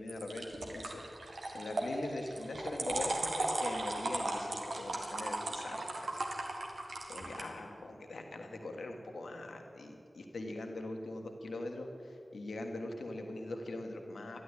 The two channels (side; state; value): both; normal; correlation 0.93